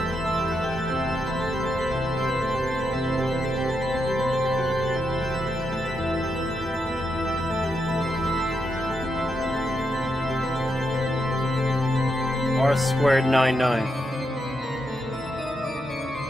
R squared 99.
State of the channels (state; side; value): normal; both; correlation 0.83